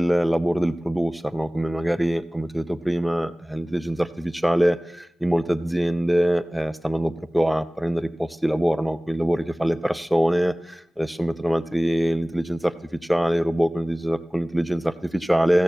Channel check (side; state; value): both; normal; correlation 0.98